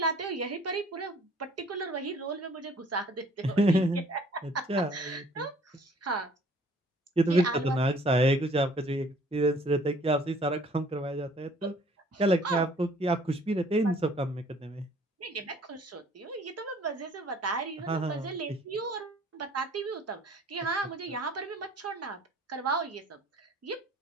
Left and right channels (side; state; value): both; normal; correlation 0.56